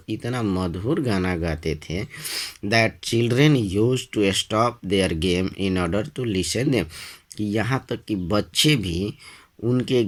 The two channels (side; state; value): both; identical; correlation 1.00